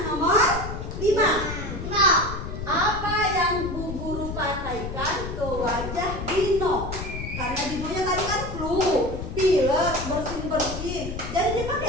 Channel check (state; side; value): noise; left; rumble, 7 dB below the sound